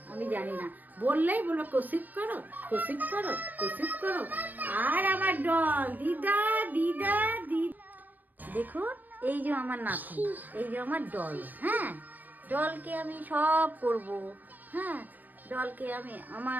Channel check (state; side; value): late; left; 0.087 ms